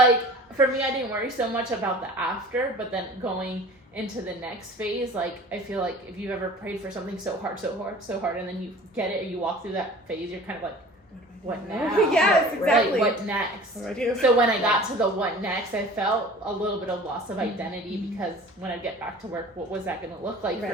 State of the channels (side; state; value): both; normal; correlation 0.43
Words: for me, I didn't worry so much about the after, but then going into the next phase, like, I feel like if you've ever prayed for something so hard, and then you get it, or you walk through that phase, you're kind of like, what now? Yes, exactly. Like, what next? What do I do? So when I got to the what next, I felt a little bit of loss of identity because when I get back to work, what was that going to look like